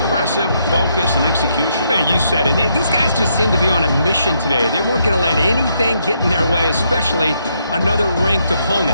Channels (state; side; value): inverted; both; correlation -0.75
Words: focus and execution. Man, you said it. These guys just seem to be on a mission today. They weren't going to let anything get in their way, especially another ranked